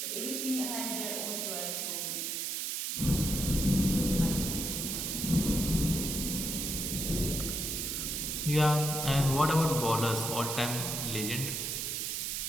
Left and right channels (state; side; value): noise; right; hiss, 2 dB below the sound